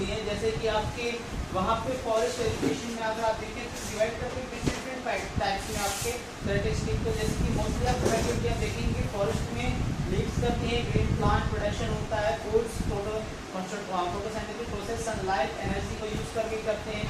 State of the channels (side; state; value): both; identical; correlation 1.00